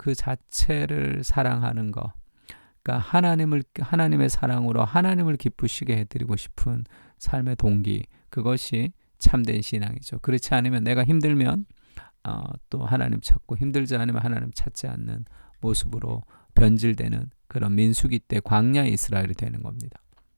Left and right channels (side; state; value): both; inverted; correlation -1.00